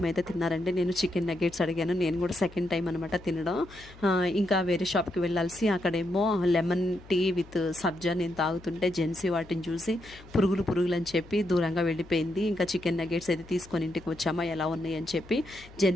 అయితే తిన్నారండి. నేను చికెన్ నగ్గెట్స్ అడిగాను. నేను కూడా సెకండ్ టైం అనమాట తినడం. ఇంకా వేరే షాప్కి వెళ్ళాల్సి అక్కడేమో లెమన్ టీ విత్ సబ్జా నేను తాగుతుంటే జెన్సీ వాటిని చూసి పురుగులు అని చెప్పి దూరంగా వెళ్ళిపోయింది. ఇంకా చికెన్ నగ్గెట్స్ అయితే తీసుకొని ఇంటికి వచ్చామా ఎలా ఉన్నాయి అని చెప్పి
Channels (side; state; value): left; noise; hum, 21 dB below the sound